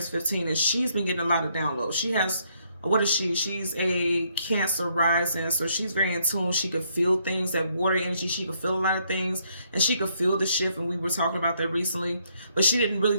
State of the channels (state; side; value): inverted; both; correlation -0.72